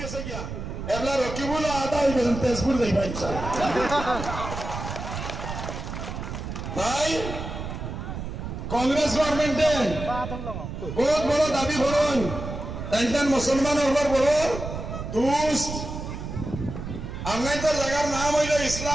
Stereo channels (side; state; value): right; noise; rumble, 7 dB below the sound